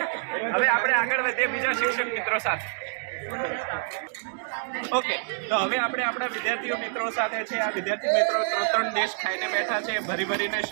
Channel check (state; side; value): silent; left; digital silence